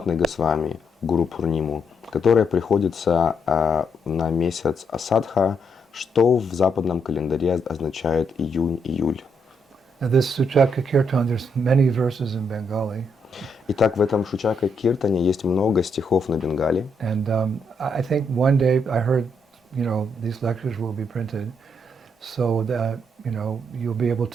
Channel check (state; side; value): normal; both; correlation 0.77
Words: Госвами, Гуру Пурниму, которая приходится на месяц Асадха, что в западном календаре означает июнь-июль. Now this Suchaka Kirtan, there's many verses in Bengali. Итак, в этом Шучака Киртане есть много стихов на бенгале. And I think one day I heard, these lectures will be printed so that, you'll be able